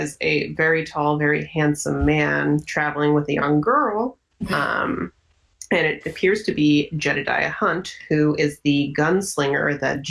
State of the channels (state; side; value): identical; both; correlation 1.00